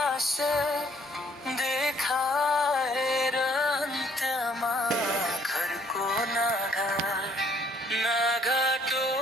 देखाएर अन्त्यमा घरको नाघाटो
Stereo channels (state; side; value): normal; both; correlation 0.63